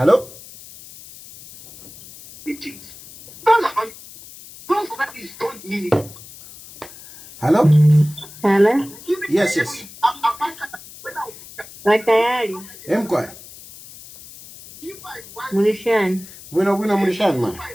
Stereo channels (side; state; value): left; noise; hiss, 18 dB below the sound